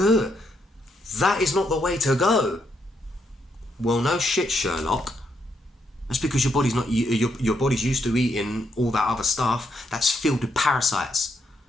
that is not the way to go. Well, no shit, Sherlock. That's because your body's not, your body's used to eating all that other stuff that's filled with parasites.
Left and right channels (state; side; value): normal; both; correlation 0.77